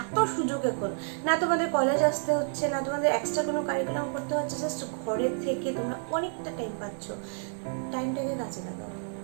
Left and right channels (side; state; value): left; silent; digital silence